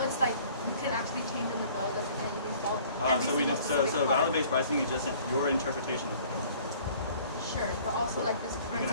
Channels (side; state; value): both; inverted; correlation -0.53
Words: it's like you can actually change in the bill, doesn't anything fall. So value-based pricing is just your interpretation of the bill. Sure, but also like this current